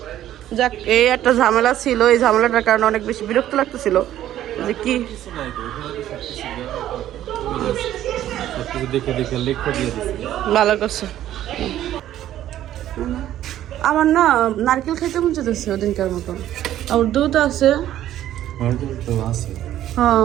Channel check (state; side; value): quieter; left; 12.4 dB